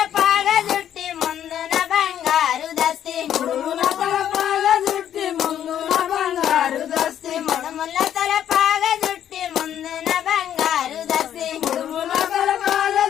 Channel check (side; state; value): right; quieter; 10.3 dB